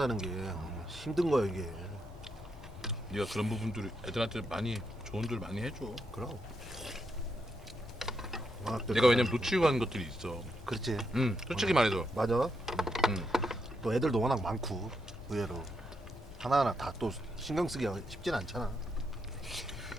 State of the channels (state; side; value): normal; both; correlation 0.81